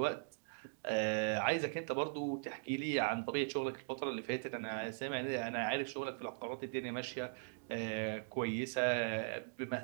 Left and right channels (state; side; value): silent; left; digital silence